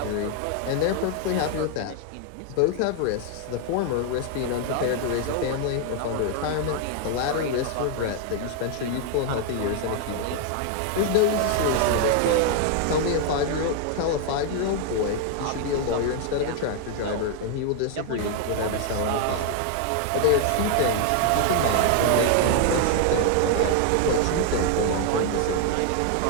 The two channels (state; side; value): different; both; correlation 0.00